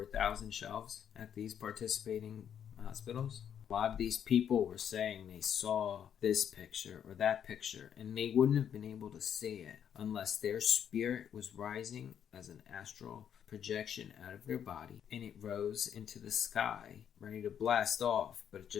1,000 shelves at these participating hospitals. A lot of these people were saying they saw this picture or that picture, and they wouldn't have been able to see it unless their spirit was rising as an astral projection out of their body, and it rose into the sky, ready to blast off, but it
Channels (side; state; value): right; quieter; 8.8 dB